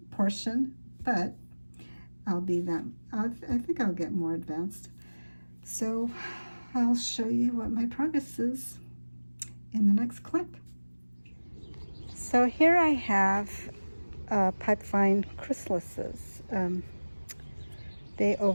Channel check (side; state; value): both; inverted; correlation -1.00